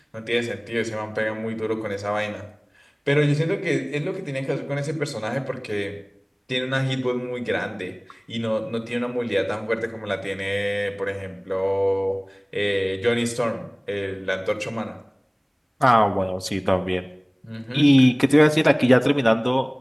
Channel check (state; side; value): identical; both; correlation 1.00